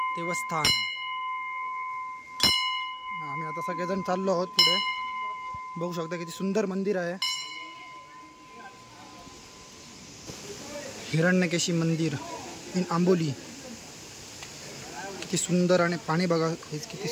देवस्थान. आम्ही आता सगळेजण चाललो आहोत पुढे. बघू शकता किती सुंदर मंदिर आहे. हिरण्यकेशी मंदिर इन आंबोली. किती सुंदर आणि पाणी बघा हेच किती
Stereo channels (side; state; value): both; identical; correlation 1.00